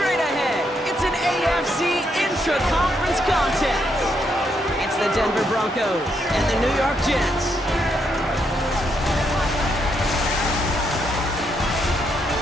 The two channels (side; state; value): both; normal; correlation 0.77